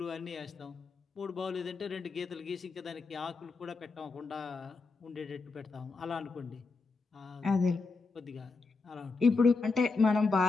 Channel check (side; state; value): right; quieter; 4.1 dB